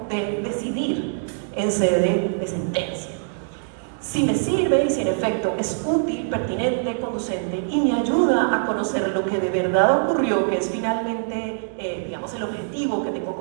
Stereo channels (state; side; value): silent; left; digital silence